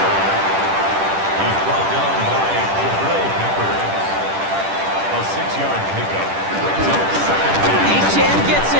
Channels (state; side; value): late; left; 10 ms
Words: He's brought down by Peppers. A 6-yard pickup. Brings up 2nd down. Chan gets